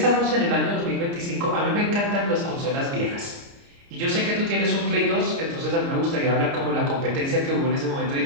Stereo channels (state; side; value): late; left; 29 ms